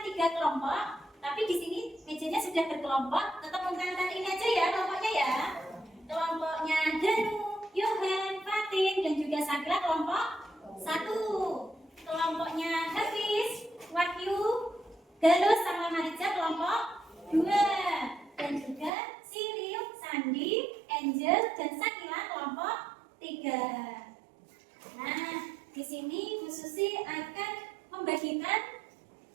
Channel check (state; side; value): drops out; left; at 18.9 s